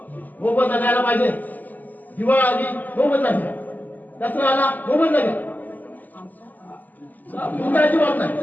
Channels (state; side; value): late; right; 0.083 ms